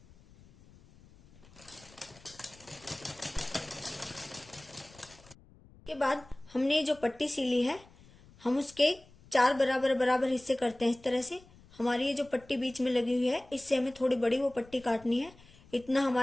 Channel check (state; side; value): noise; left; rumble, 25 dB below the sound